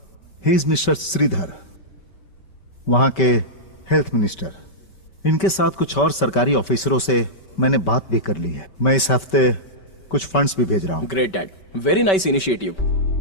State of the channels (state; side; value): late; right; 5.2 ms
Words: ही इज मिस्टर श्रीधर, वहां के हेल्थ मिनिस्टर। इनके साथ कुछ और सरकारी ऑफिसरों से मैंने बात भी कर ली है। मैं इस हफ्ते कुछ फंड्स भी भेज रहा हूं। Great dad, very nice initiative.